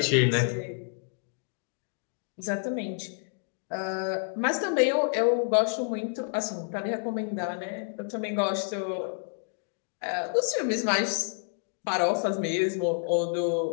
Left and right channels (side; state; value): right; silent; digital silence